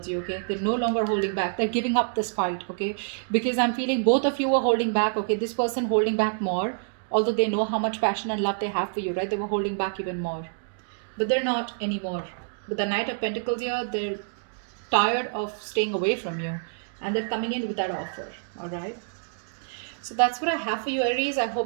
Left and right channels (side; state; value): left; silent; digital silence